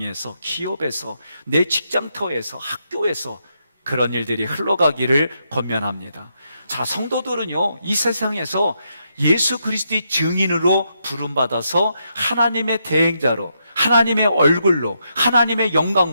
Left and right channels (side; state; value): both; inverted; correlation -0.80